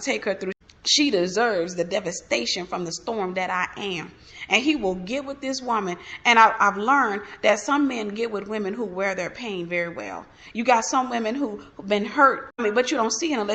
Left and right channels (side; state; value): both; identical; correlation 1.00